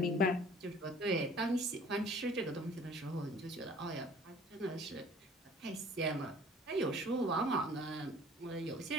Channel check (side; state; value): both; normal; correlation 0.51